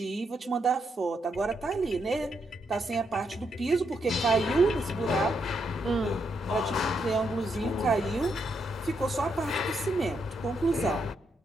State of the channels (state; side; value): normal; both; correlation 0.79